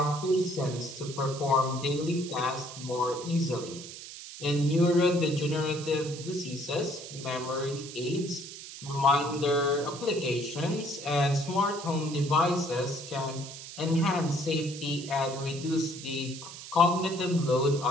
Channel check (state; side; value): noise; right; hiss, 12 dB below the sound